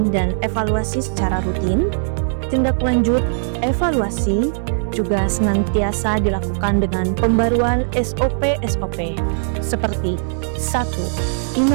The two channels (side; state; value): left; silent; digital silence